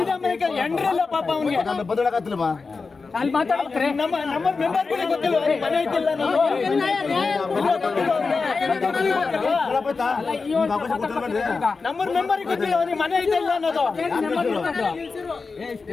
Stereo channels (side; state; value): right; quieter; 4.4 dB